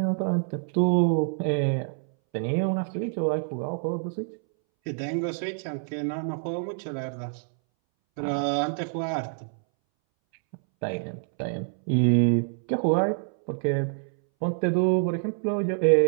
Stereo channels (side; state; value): left; silent; 60 dB below the other